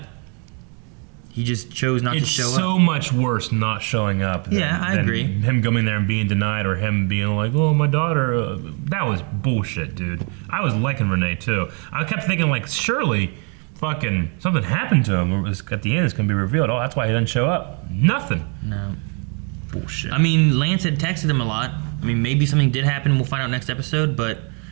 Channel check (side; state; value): left; quieter; 37.3 dB